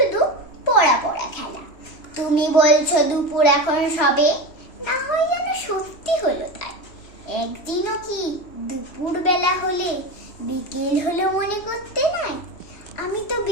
পড়া পড়া খেলা। তুমি বলছো দুপুর এখন সবে, না হয় যেন সত্যি হলো তাই। একদিনও কি দুপুর বেলা হলে বিকেল হলো মনে করতে নাই? আমি তো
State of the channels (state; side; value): late; right; 3.1 ms